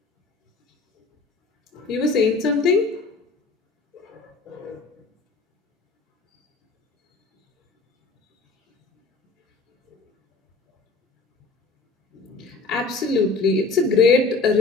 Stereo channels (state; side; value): quieter; right; 3.8 dB